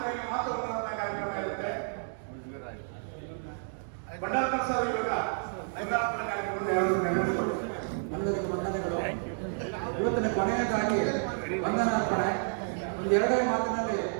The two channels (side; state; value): left; silent; digital silence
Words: ಮಾತುಗಳನ್ನ ಕಾರ್ಯಕ್ರಮ ಇರುತ್ತೆ. ಬಂಡಾರ್ಕರ್ ಸರ್ ಇವಾಗ ನೈರಾಪುರ ಕಾರ್ಯಕ್ರಮವನ್ನು ಎಲ್ಲರಿಗೂ ವಂದನೆಗಳು. ಇವತ್ತಿನ ಕೊನೆಯದಾಗಿ ವಂದನಾರ್ಪಣೆ ಒಂದು 2 ಮಾತಿನಲ್ಲಿ